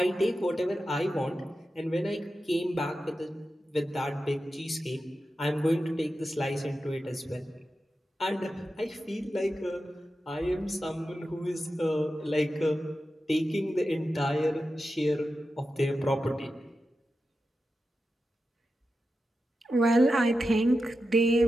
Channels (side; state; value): both; normal; correlation 0.91